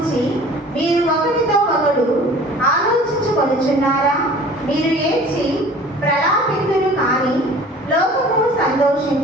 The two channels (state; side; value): normal; both; correlation 0.46